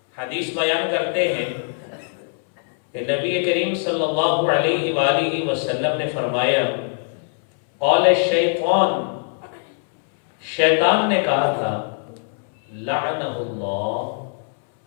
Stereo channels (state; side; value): silent; right; 62 dB below the other